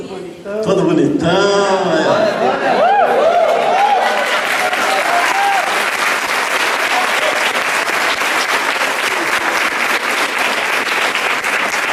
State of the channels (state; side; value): identical; both; correlation 1.00